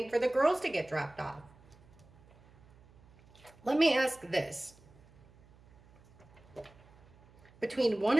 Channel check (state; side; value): noise; right; hum, 26 dB below the sound